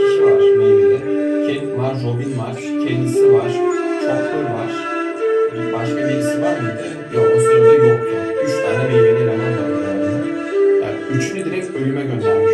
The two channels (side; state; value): both; identical; correlation 1.00